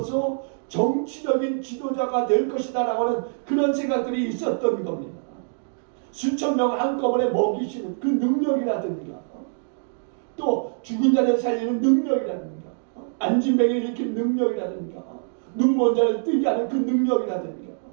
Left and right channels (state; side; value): silent; left; digital silence